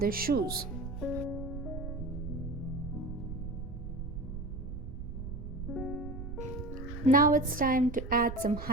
shoes. Now it's time to add some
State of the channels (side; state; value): right; noise; rumble, 7 dB below the sound